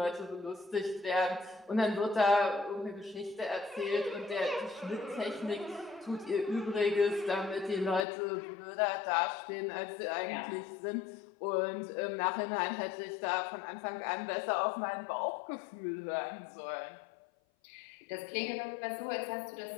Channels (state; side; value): drops out; right; at 8.1 s